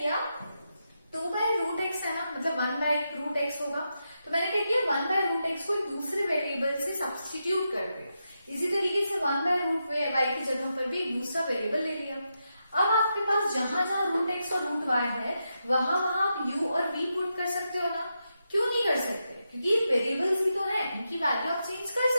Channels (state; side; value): inverted; both; correlation -0.86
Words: 2/√x है ना, मतलब 1/√x होगा, तो मैंने क्या किया 1/√x को एक दूसरे वेरिएबल से सब्स्टिट्यूट कर दिया। इसी तरीके से 1/√y की जगह पर भी एक दूसरा वेरिएबल ले लिया। अब आपके पास जहां जहां √x और √y है वहां आप u और v पुट कर सकते हो ना। क्यों नहीं कर सकते, क्योंकि वेरिएबल्स ही तो है, इनकी वैल्यू आप चेंज कर